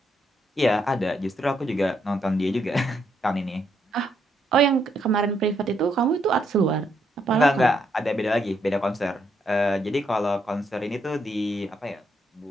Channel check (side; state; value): both; normal; correlation 0.76